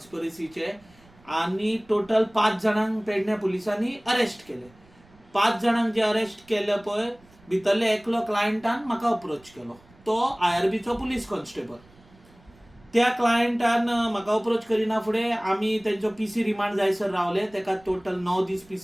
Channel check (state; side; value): noise; right; rumble, 28 dB below the sound